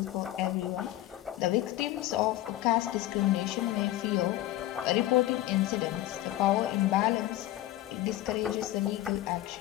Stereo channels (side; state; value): right; quieter; 15.3 dB